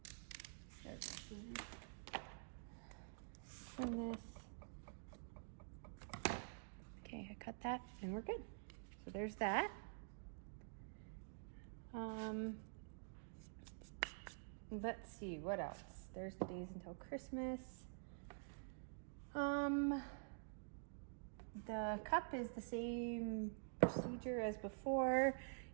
There's my scissors. Trim this. Okay, I cut that, and we're good. So there's that. Let's see, what else? There's the days until Christmas. The cup is the same procedure as before.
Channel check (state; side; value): silent; left; digital silence